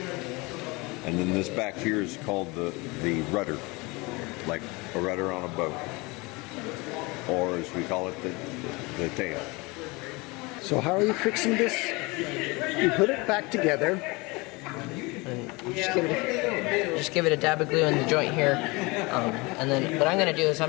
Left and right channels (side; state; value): right; quieter; 25.5 dB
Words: And then this back here is called the rudder, like a rudder on a boat. Or as we call it, the tail. So how are you fixing this? You put it back together. And just give it a dab of glue in the joint here, and then what I'm going to do is